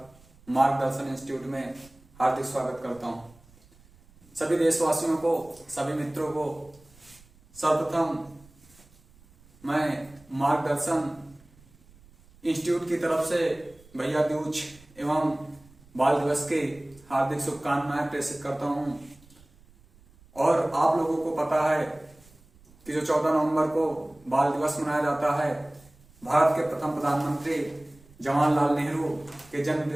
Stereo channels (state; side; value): noise; right; rumble, 27 dB below the sound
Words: मार्गदर्शन इंस्टीट्यूट में हार्दिक स्वागत करता हूं। सभी देशवासियों को, सभी मित्रों को सर्वप्रथम मैं मार्गदर्शन इंस्टीट्यूट की तरफ से भैया दूज एवं बाल दिवस की हार्दिक शुभकामनाएं प्रेषित करता हूं। और आप लोगों को पता है कि जो 14 नवंबर को बाल दिवस मनाया जाता है, भारत के प्रथम प्रधानमंत्री जवाहरलाल नेहरू के जन्म